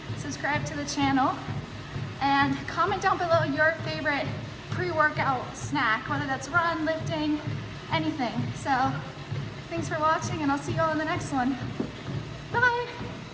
subscribe to the channel, and comment down below your favorite pre-workout snack, whether that's run, lifting, anything. So thanks for watching, and I'll see you all in the next one. Bye!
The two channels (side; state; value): both; identical; correlation 1.00